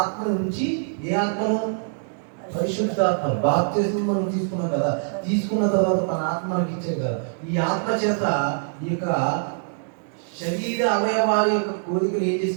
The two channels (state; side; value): silent; left; digital silence